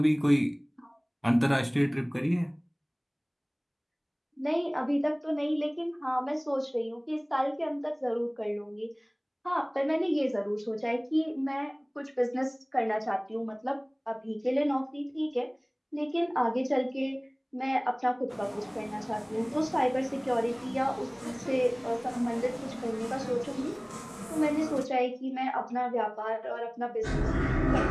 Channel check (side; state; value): both; identical; correlation 1.00